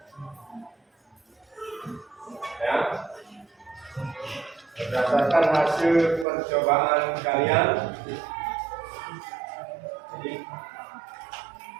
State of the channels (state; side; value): drops out; left; at 6.2 s